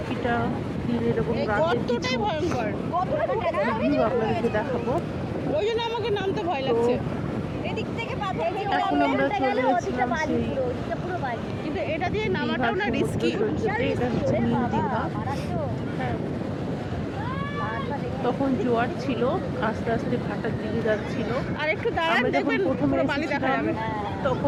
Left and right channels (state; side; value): identical; both; correlation 1.00